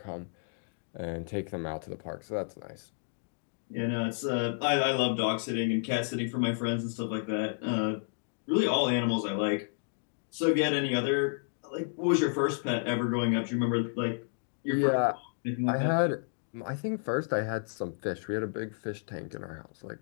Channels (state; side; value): silent; right; digital silence